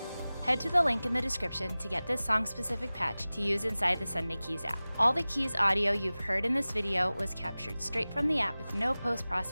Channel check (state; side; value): inverted; both; correlation -0.98